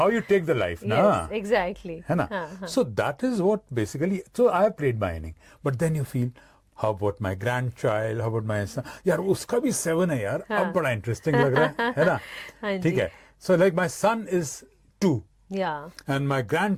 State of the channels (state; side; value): identical; both; correlation 1.00